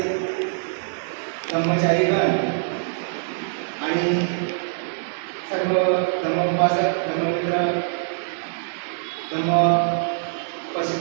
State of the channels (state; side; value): silent; left; 63 dB below the other